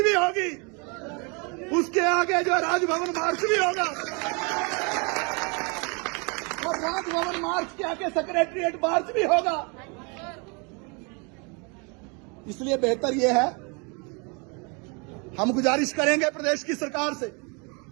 भी होगी, उसके आगे जो राजभवन मार्च भी होगा, और राजभवन मार्च के आगे सेक्रेटरिएट मार्च भी होगा। इसलिए बेहतर यह है, हम गुजारिश करेंगे प्रदेश की सरकार से,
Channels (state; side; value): quieter; left; 32.2 dB